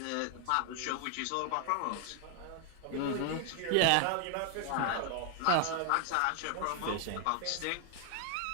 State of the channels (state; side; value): different; both; correlation 0.00